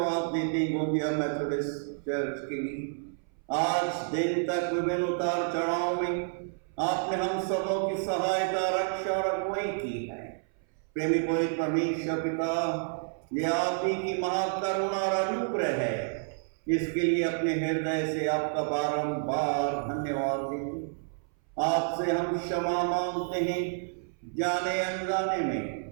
देते हैं गोंदिया मेथोडिस्ट चर्च के लिए। आज दिन तक विभिन्न उतार चढ़ाव में आपने हम सबों की सहायता, रक्षा और अगुवाई की है। प्रेमी पवित्र परमेश्वर पिता, ये आप ही की महाकरुणा और अनुग्रह है, इसके लिए अपने हृदय से आपका बारंबार धन्यवाद देते। आपसे हम क्षमा मांगते हैं, जाने अनजाने में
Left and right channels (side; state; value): left; silent; 58 dB below the other